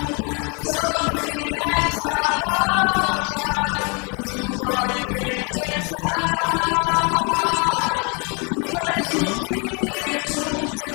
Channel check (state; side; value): quieter; right; 34.3 dB